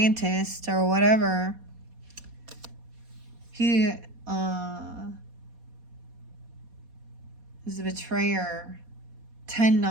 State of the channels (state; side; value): late; left; 4.2 ms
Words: or whatever. He is a betrayer.